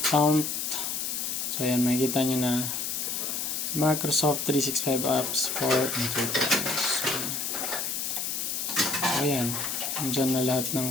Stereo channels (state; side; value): noise; left; hiss, 2 dB below the sound